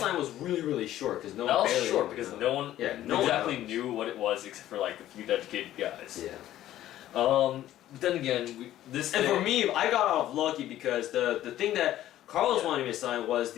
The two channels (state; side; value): quieter; right; 13.2 dB